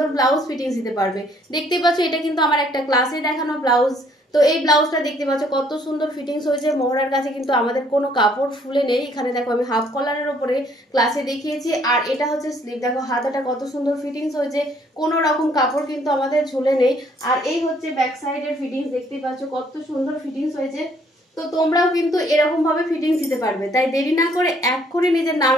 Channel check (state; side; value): normal; both; correlation 0.64